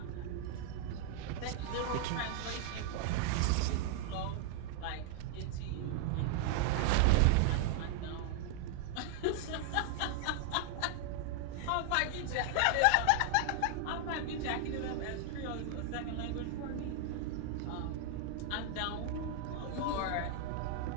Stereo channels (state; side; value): different; both; correlation 0.00